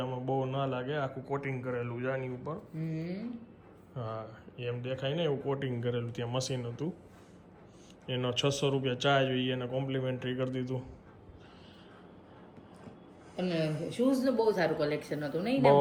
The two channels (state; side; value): identical; both; correlation 1.00